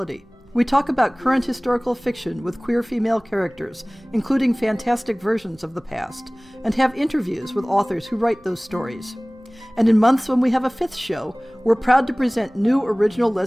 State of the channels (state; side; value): noise; right; rumble, 30 dB below the sound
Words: We talk about current historical fiction with queer female characters, including fantastic versions of the past, and have interviews with authors who write those stories. And in months when we have a fifth show, we're proud to present new original